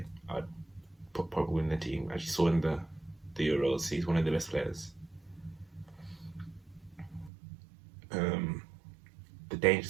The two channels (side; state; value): left; drops out; at 7.3 s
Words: I'd put Pogba in the team. As you saw in the Euros, he's one of the best players. The